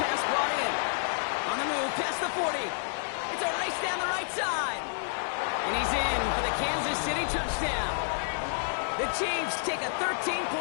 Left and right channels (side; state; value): right; silent; 58 dB below the other